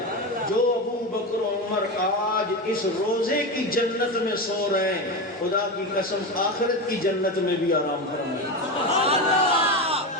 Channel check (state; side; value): normal; both; correlation 0.19